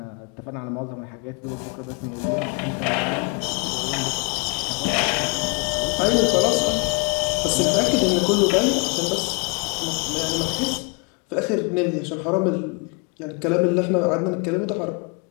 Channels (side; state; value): right; quieter; 33.3 dB